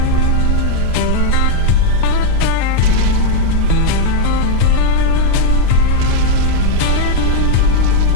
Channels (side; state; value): both; different; correlation 0.00